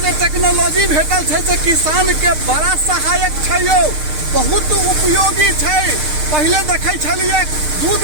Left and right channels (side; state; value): left; late; 6.6 ms